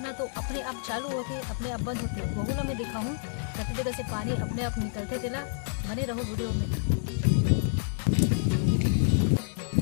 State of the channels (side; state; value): right; silent; digital silence